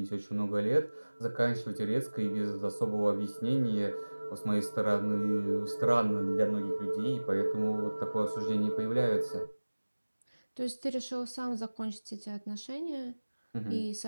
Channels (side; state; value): both; inverted; correlation -1.00